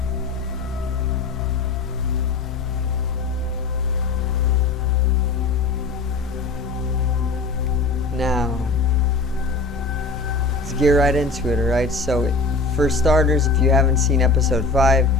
Now, let's get right into it, alright? So, for starters, if you haven't seen episode 5,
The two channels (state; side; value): quieter; right; 3.9 dB